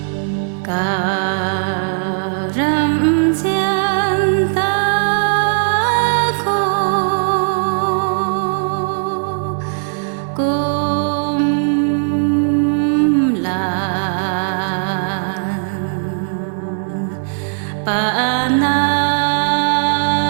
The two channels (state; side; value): silent; left; digital silence